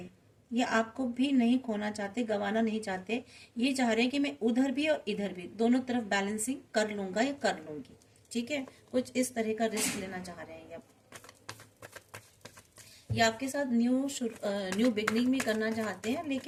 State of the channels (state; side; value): identical; both; correlation 1.00